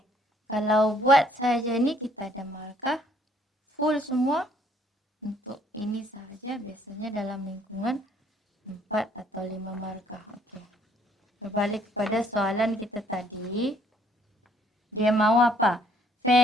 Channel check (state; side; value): normal; both; correlation 0.63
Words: Kalau buat saja ni kita ada markah full semua. Untuk ini sahaja biasanya dalam lingkungan 4 atau 5 markah. Okey. Berbalik kepada soalan kita tadi. Dia mahu apa?